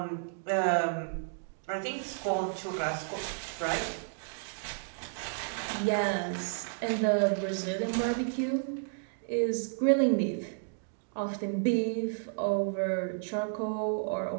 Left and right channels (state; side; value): silent; left; digital silence